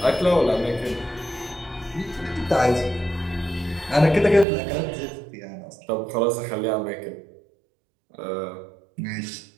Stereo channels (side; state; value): left; drops out; at 4.5 s